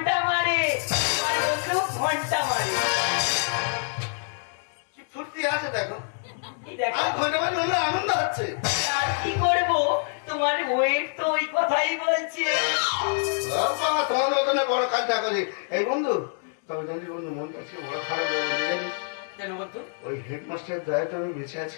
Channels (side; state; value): right; silent; 61 dB below the other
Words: মারে আমার বন্ধু, ঘন্টা মারে। কি ফুর্তি আছে দেখো, এই দেখো, আর ঘন্টা মারলে আমার আনন্দ হচ্ছে। আর কি করবো, তোমার ওয়েট তো ওই কথাই বলছে। বাবা, তোমার মতনে বড় কাজটা করি। এই বন্ধু, তবে জানিস বন্ধু, মনটা আজকে বড় খারাপ হয়ে বলতে জানিস, কেন বলতো? ওই হেডমাস্টার দয়াতে আমি বেঁচে